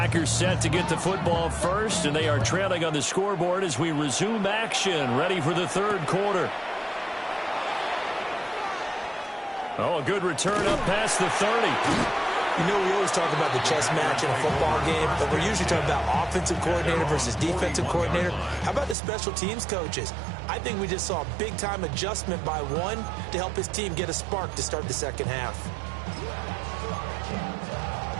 set to get the football first, and they are trailing on the scoreboard as we resume action, ready for the third quarter. Oh, a good return up past the 30. You know, we always talk about the chess match in a football game, but we're usually talking about offensive coordinator versus defensive coordinator. How about the special teams coaches? I think we just saw a big-time adjustment by one to help his team get a spark to start the second half.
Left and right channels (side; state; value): left; drops out; at 18.9 s